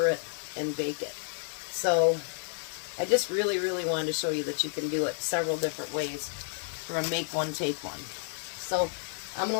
it, and bake it. So I just really wanted to show you that you can do it several different ways for a make one, take one. So I'm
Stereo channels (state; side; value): silent; right; 57 dB below the other